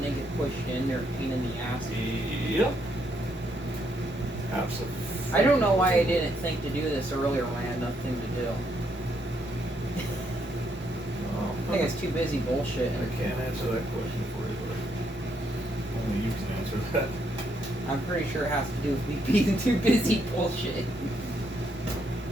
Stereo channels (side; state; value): both; normal; correlation 0.74